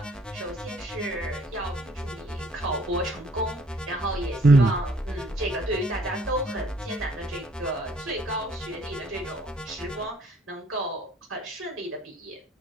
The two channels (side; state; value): both; normal; correlation 0.61